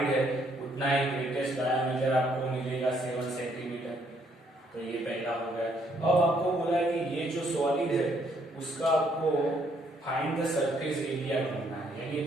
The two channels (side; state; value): both; normal; correlation 0.69